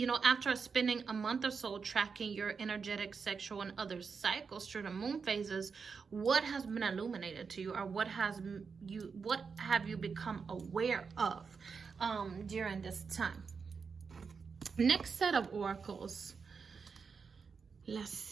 spending a month or so tracking your energetic, sexual, and other cycles through the moon phases, what has been illuminated to you, or what have you become aware of during this time? Next set of oracles. Let's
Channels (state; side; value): quieter; left; 5.5 dB